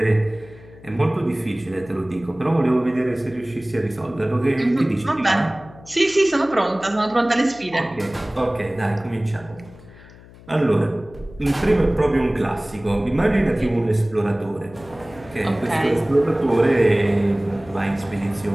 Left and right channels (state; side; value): noise; left; hum, 21 dB below the sound